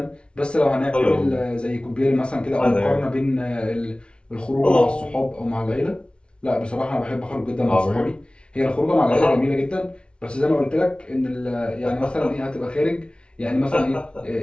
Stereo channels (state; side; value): late; right; 0.058 ms